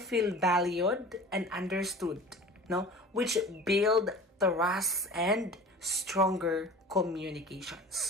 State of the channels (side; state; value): both; normal; correlation 0.39